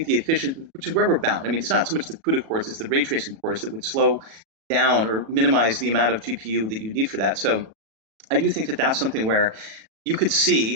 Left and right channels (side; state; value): left; late; 37 ms